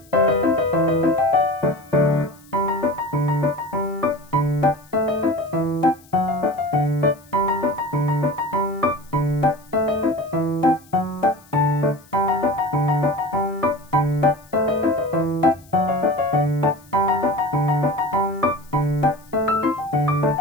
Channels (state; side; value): noise; left; hiss, 27 dB below the sound